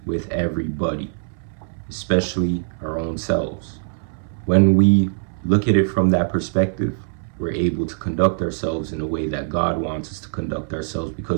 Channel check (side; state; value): left; silent; 63 dB below the other